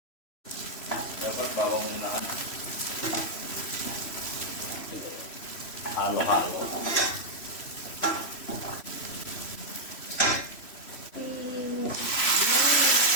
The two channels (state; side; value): late; right; 3.1 ms